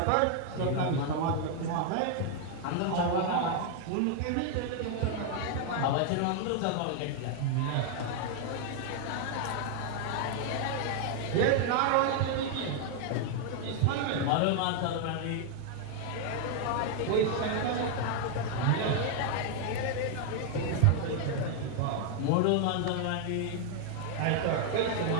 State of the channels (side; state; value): both; different; correlation 0.00